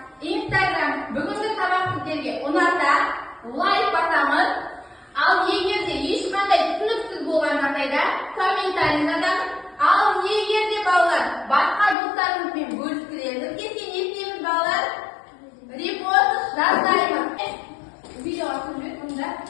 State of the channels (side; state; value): right; drops out; at 12.0 s